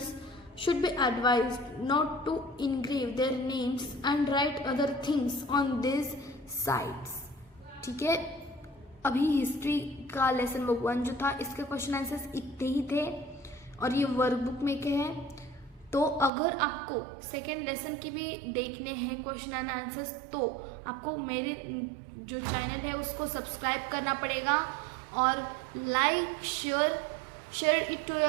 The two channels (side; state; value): left; drops out; at 16.3 s